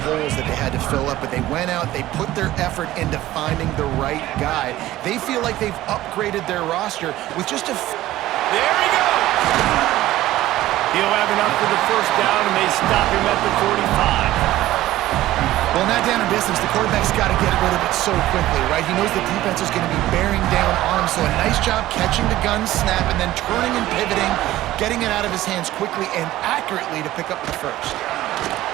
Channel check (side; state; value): left; quieter; 15.4 dB